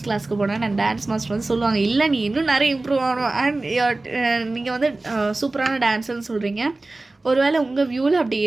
கிளாஸ்க்கு போனேன். நான் டான்ஸ் மாஸ்டர் சொல்லுவாங்க, இல்லை நீ இன்னும் நிறைய இம்ப்ரூவ் ஆகணும். அண்ட் நீங்கள் சூப்பரான டான்ஸர்னு சொல்கிறீங்க. ஒருவேளை உங்கள் வியூவில் அப்படி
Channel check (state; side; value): quieter; left; 3.1 dB